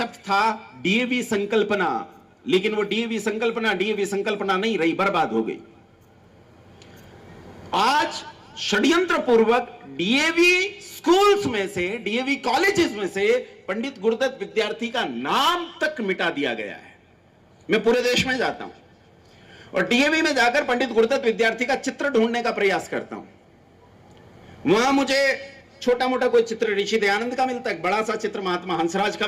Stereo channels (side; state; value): both; identical; correlation 1.00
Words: था डीएवी संकल्पना, लेकिन वो डीएवी संकल्पना नहीं रही, बर्बाद हो गई। आज षड्यंत्र पूर्वक डीएवी स्कूल्स में से, डीएवी कॉलेजेस में से पंडित गुरुदत्त विद्यार्थी का नाम तक मिटा दिया गया है। मैं पूरे देश में जाता हूं और डीएवी में जाकर पंडित गुरुदत्त विद्यार्थी का चित्र ढूंढने का प्रयास करता हूं। वहां मुझे छोटा मोटा कोई चित्र ऋषि दयानंद का मिलता है, एक बड़ा सा चित्र महात्मा हंसराज का